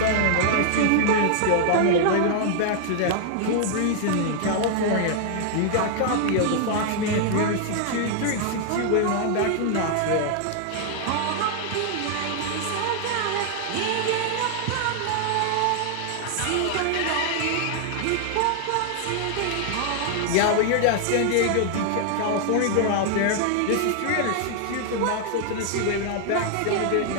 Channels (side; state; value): both; different; correlation 0.00